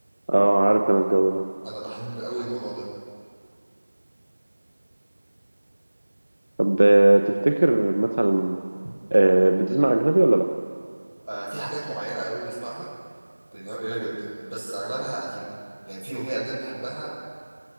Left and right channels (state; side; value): inverted; both; correlation -1.00